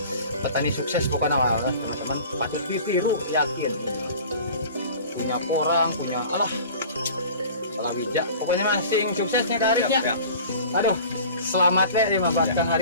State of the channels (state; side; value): inverted; both; correlation -0.42